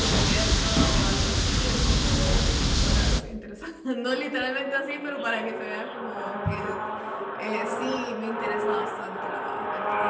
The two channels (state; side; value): identical; both; correlation 1.00